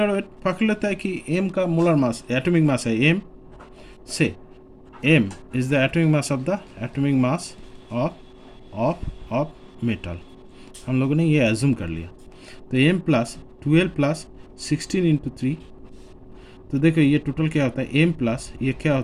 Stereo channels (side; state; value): both; identical; correlation 1.00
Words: वेट पकड़ लेता है कि m का मोलर मास एटॉमिक मास है m से, m is the atomic mass of metal. हम लोगों ने ये एज्यूम कर लिया। तो m प्लस 12 प्लस 16 इंटू 3। तो देखो ये टोटल क्या होता है, m प्लस ये क्या